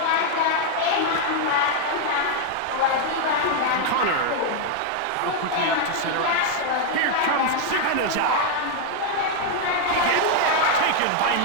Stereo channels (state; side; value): different; both; correlation 0.01